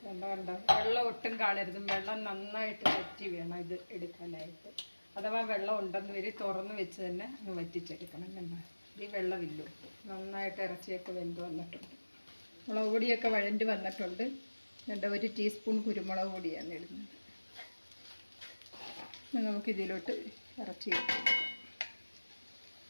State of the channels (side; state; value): both; inverted; correlation -1.00